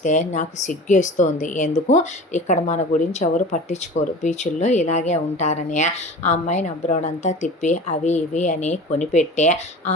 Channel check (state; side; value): normal; both; correlation 0.37